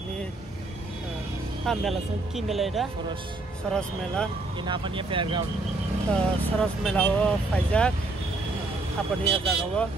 mela ki mela ida Soros mela ini apa nih fairground Soros mela wo Faizak apa nih jaga wo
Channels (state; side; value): quieter; left; 3.0 dB